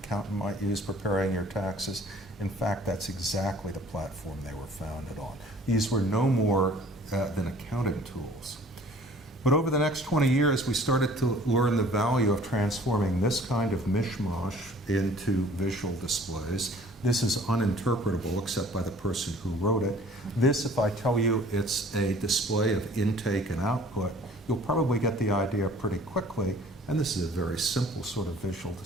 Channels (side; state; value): both; normal; correlation 0.52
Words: might use preparing your taxes. In fact, that's exactly the platform they were founded on. These were no more than accounting tools. But over the next 20 years, we started to learn the value of transforming this kind of mishmash into visual displays. This is uninterpretable except by the person who wrote it. This, if I tell you it's a display of intake and output, you'll probably get the idea pretty quickly. And this is a very simple sort of visual